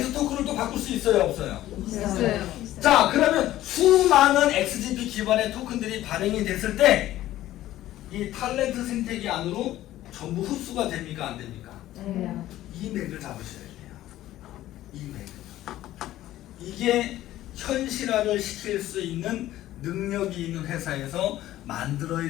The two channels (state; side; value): quieter; right; 14.3 dB